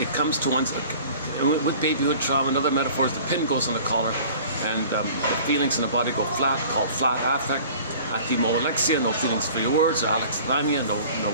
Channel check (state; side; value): inverted; both; correlation -0.46